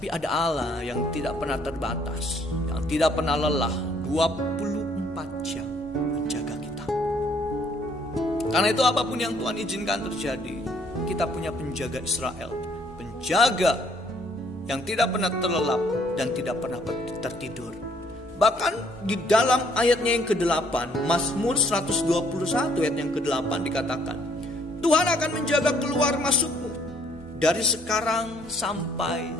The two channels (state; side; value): normal; both; correlation 0.64